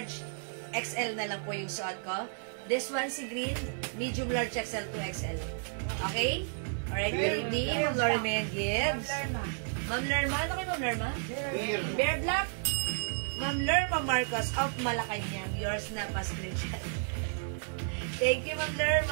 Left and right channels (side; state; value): left; silent; 55 dB below the other